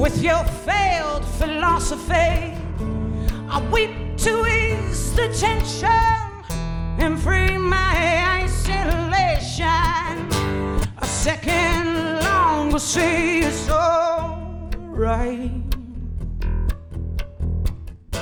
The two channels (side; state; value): both; identical; correlation 1.00